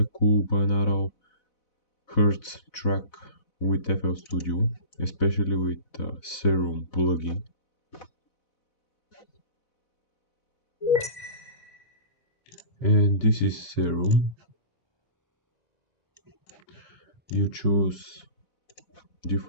cool binaural hertz track with FL Studio, especially with Serum plugin. And this is Serum. You choose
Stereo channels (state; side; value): late; right; 4.0 ms